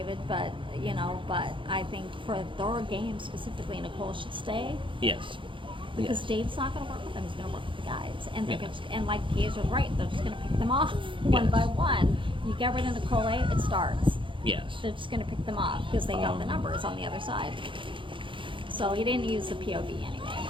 but I think for their game specifically, Nicole should stay Yes. because Yes. Dave's not going to work with them. He's going to work with the guys, and they're Yeah. and like Kaiser's right, they're just going to pick them off one Yes. by one. You get rid of Nicole A, it starts. Yes. They're just going to pick them off because they got the numbers on the other side. So he didn't use the POV anyway.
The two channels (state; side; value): late; left; 0.24 ms